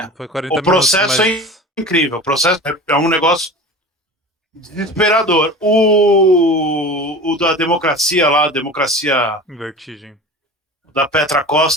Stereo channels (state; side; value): normal; both; correlation 0.35